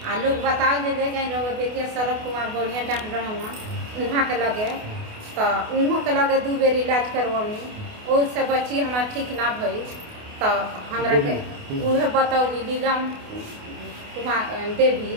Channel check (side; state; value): left; late; 28 ms